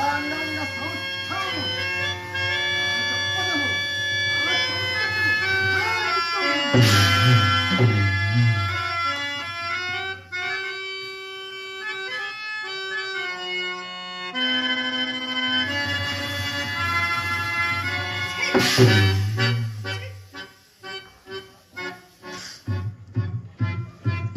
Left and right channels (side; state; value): both; identical; correlation 1.00